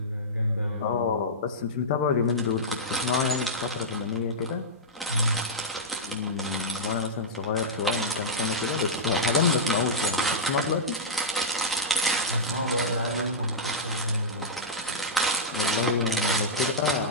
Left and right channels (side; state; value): both; normal; correlation -0.10